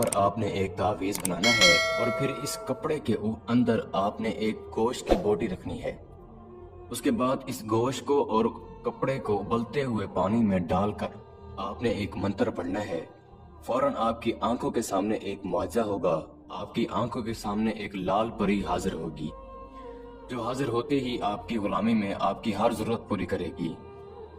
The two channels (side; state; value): both; identical; correlation 1.00